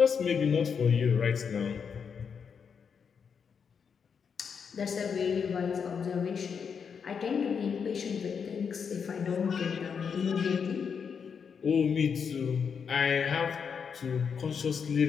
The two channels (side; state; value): right; quieter; 6.5 dB